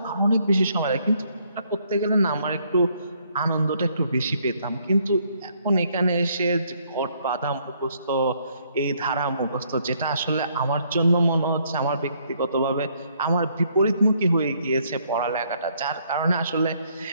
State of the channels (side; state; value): both; inverted; correlation -0.68